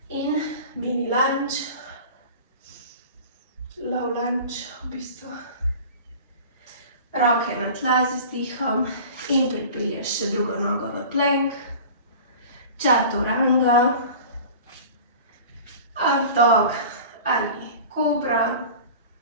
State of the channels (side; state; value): both; inverted; correlation -0.39